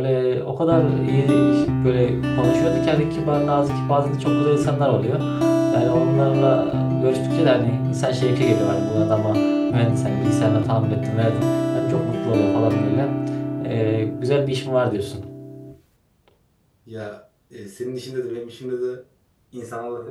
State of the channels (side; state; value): both; identical; correlation 1.00